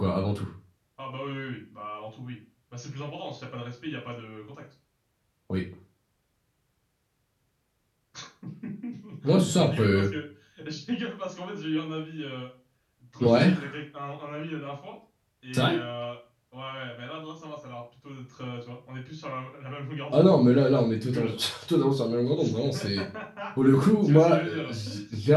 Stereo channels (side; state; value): both; identical; correlation 1.00